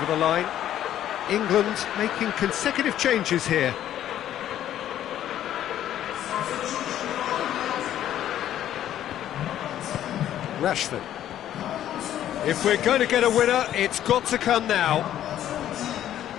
the line. England making consecutive changes here. Rashford. If we're going to get a winner, it's got to come now.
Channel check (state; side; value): quieter; right; 11.6 dB